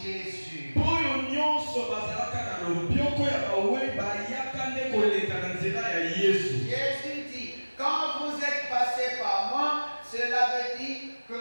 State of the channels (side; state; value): both; inverted; correlation -1.00